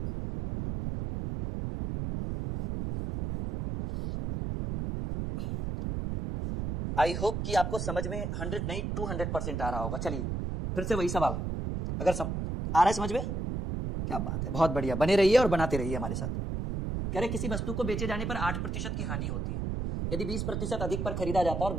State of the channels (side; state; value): right; noise; rumble, 3 dB below the sound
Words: आई होप कि आपको समझ में 100 नहीं 200% आ रहा होगा। चलिए फिर से वही सवाल, अगर आ रहा है समझ में, क्या बात है, बहुत बढ़िया, बने रहिए और बनाते रहिए हमारे साथ। कह रहे किसी वस्तु को बेचे जाने पर 8% की हानि होती है। यदि 20% अधिक पर खरीदा जाता और